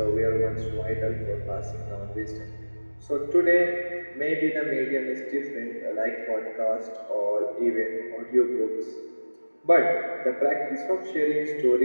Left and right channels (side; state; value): both; inverted; correlation -1.00